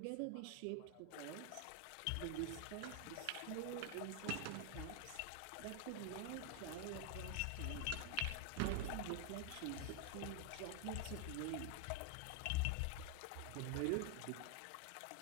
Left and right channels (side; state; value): both; different; correlation 0.00